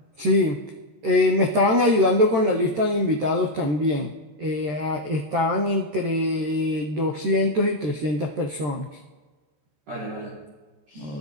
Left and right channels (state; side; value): late; left; 13 ms